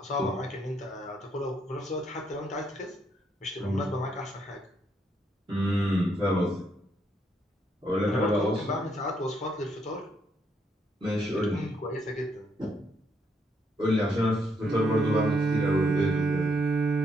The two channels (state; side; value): normal; both; correlation 0.74